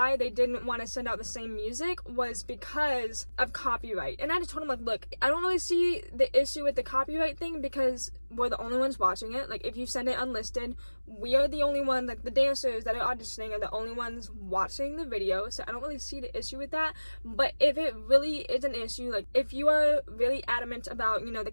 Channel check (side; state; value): both; inverted; correlation -1.00